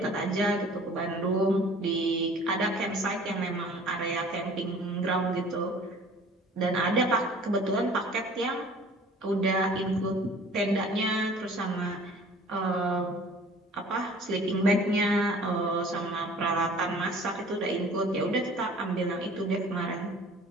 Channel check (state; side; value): normal; both; correlation 0.49